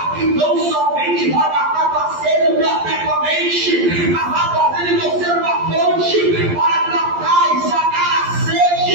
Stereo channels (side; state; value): left; late; 11 ms